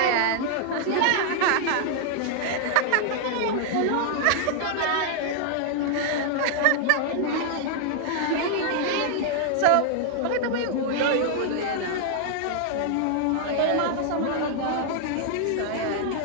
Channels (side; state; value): both; different; correlation 0.00